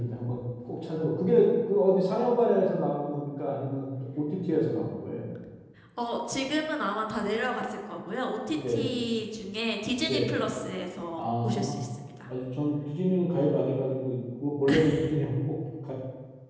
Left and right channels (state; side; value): identical; both; correlation 1.00